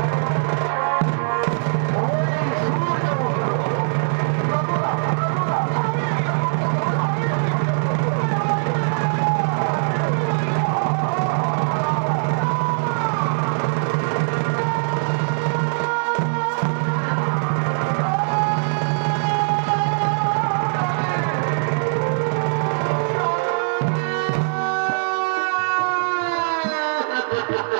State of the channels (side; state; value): left; silent; digital silence